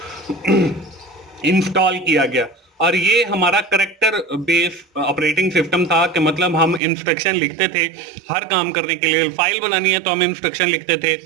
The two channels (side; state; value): left; drops out; at 6.8 s